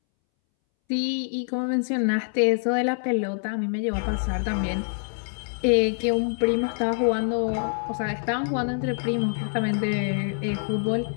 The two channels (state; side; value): silent; right; 61 dB below the other